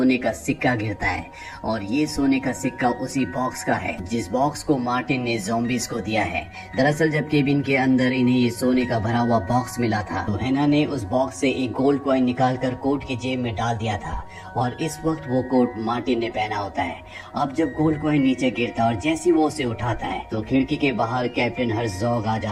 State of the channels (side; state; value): both; identical; correlation 1.00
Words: का सिक्का गिरता है और ये सोने का सिक्का उसी बॉक्स का है जिस बॉक्स को मार्टिन ने ज़ॉम्बीज को दिया है। दरअसल जब केबिन के अंदर इन्हें ये सोने का भरा हुआ बॉक्स मिला था तो हेना ने उस बॉक्स से एक गोल्ड कॉइन निकालकर कोट की जेब में डाल दिया था और इस वक्त वो कोट मार्टिन ने पहना होता है। अब जब गोल्ड कॉइन नीचे गिरता है और जैसे वो उसे उठाता है तो खिड़की के बाहर कैप्टन हर्जोग आ